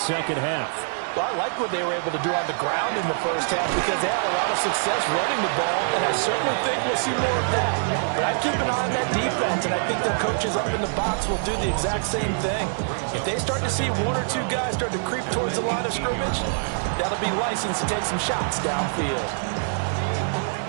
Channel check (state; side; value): silent; left; digital silence